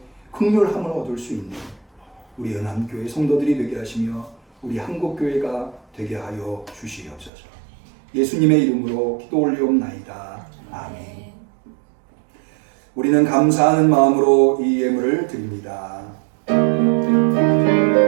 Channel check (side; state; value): left; drops out; at 7.3 s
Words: 긍휼함을 얻을 수 있는 우리 은암교회 성도들이 되게 하시며 우리 한국교회가 되게 하여 주시옵소서. 예수님의 이름으로 기도 올리옵나이다. 아멘. 우리는 감사하는 마음으로 이 예물을 드립니다.